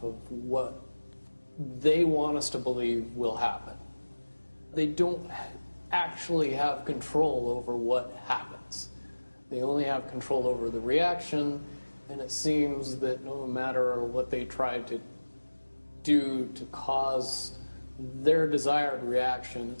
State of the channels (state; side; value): inverted; both; correlation -1.00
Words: of what they want us to believe will happen. They don't actually have control over what happens. They only have control over the reaction, and it seems that no matter what they try to do to cause their desired reaction,